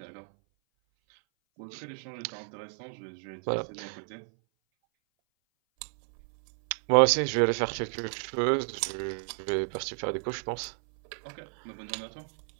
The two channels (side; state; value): left; silent; 57 dB below the other